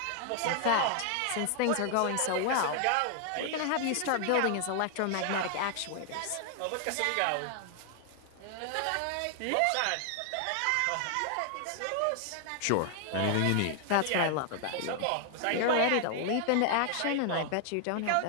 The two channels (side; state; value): both; different; correlation 0.00